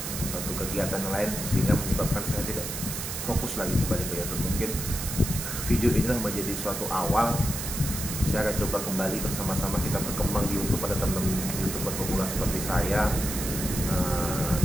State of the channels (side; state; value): right; noise; hiss, 5 dB below the sound